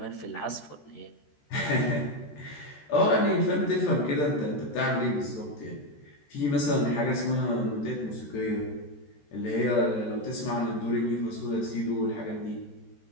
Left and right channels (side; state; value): right; late; 14 ms